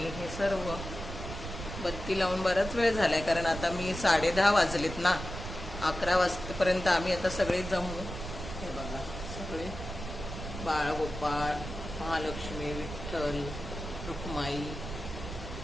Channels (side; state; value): right; noise; rumble, 8 dB below the sound